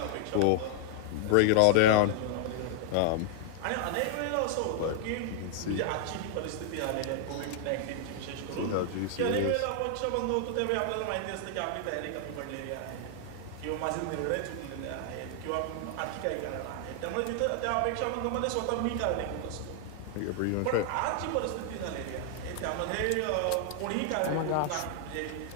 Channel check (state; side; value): different; both; correlation 0.00